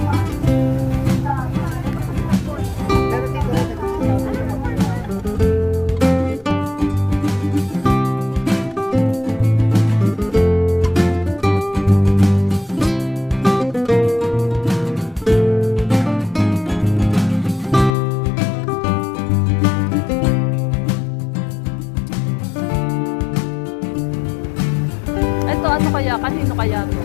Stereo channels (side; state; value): right; drops out; at 17.9 s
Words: Ito ano kaya? Kanino kaya to?